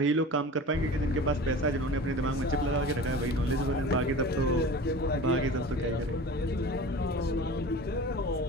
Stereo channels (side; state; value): both; normal; correlation 0.37